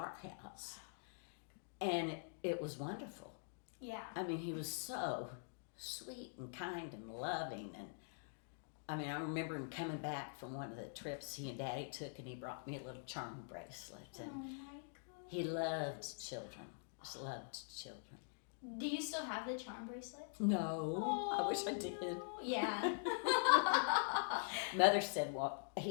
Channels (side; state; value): right; silent; digital silence